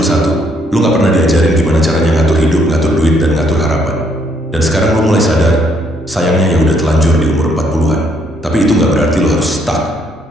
satu, lo gak pernah diajarin gimana caranya ngatur hidup, ngatur duit, dan ngatur harapan. Dan sekarang lo mulai sadar, sayangnya ya udah telanjur di umur 40-an. Tapi itu gak berarti lo harus stuck.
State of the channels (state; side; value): normal; both; correlation 0.69